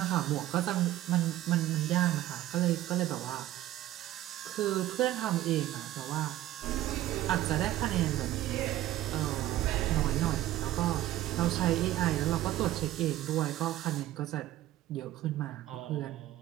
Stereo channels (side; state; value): left; quieter; 14.4 dB